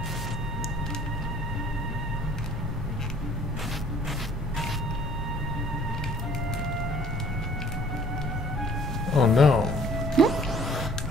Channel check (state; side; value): normal; both; correlation 0.56